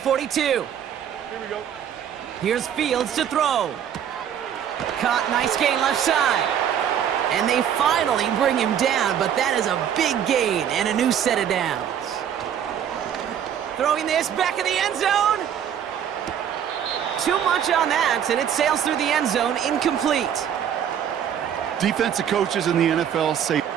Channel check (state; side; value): quieter; left; 9.2 dB